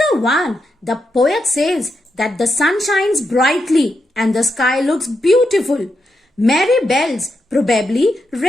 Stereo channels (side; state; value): both; normal; correlation 0.84